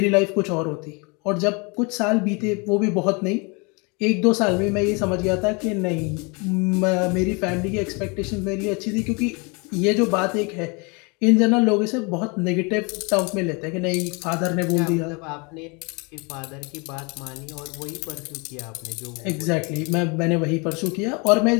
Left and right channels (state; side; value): quieter; right; 30.7 dB